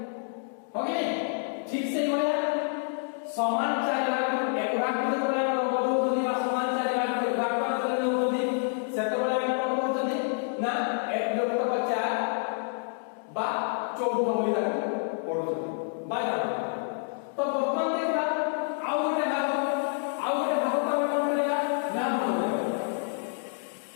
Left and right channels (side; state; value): right; silent; 59 dB below the other